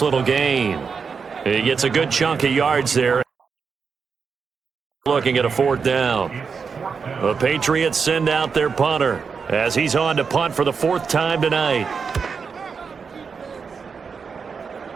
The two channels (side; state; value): left; quieter; 5.7 dB